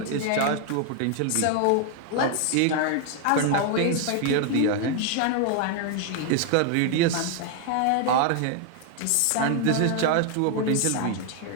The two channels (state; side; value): different; both; correlation 0.00